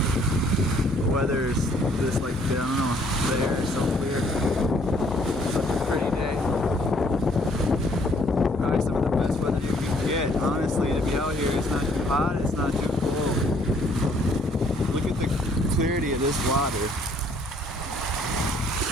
The weather is just like, I don't know, the air is so clear. Such a pretty day. Probably some of the best weather you can get. Honestly, to be out here, it's not too hot, it's not too cold. Look at the clarity of this water.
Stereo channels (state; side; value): normal; both; correlation 0.63